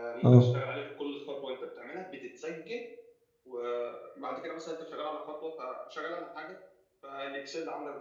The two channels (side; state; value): both; identical; correlation 1.00